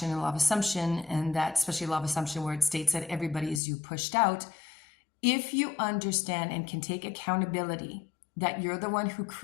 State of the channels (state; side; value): drops out; right; at 3.6 s